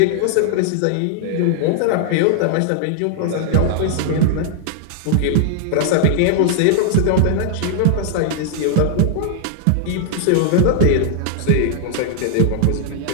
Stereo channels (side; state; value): both; different; correlation -0.01